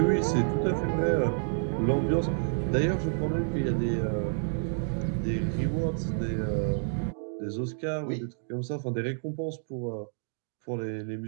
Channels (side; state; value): left; silent; digital silence